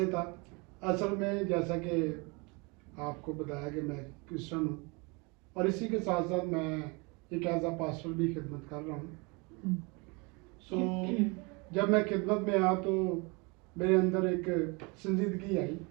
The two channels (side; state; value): left; quieter; 29.2 dB